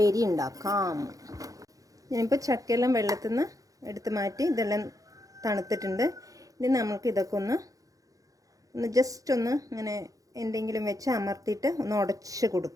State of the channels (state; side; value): late; left; 0.17 ms